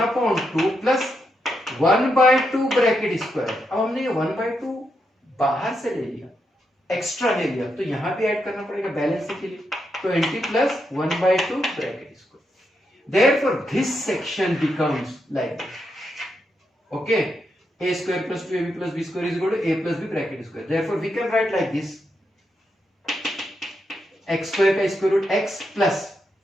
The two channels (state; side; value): normal; both; correlation 0.83